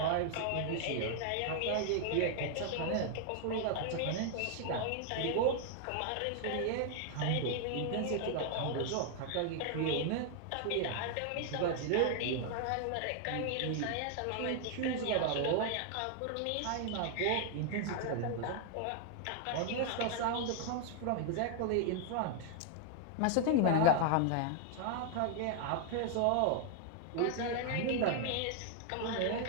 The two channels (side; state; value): both; different; correlation 0.00